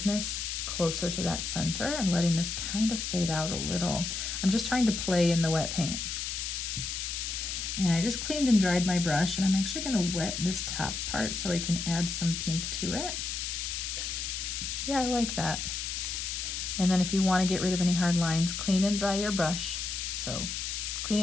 closer to that center and letting this kind of fade out a little. I'm just trying to play in the wet paint. And I just cleaned and dried my brush, and I'm actually going to wet this top part so I can add some pink to it. Yeah, I like that. And then if you want to get rid of any hard lines, clean and dry your brush. So clean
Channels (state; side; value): noise; left; hiss, 3 dB below the sound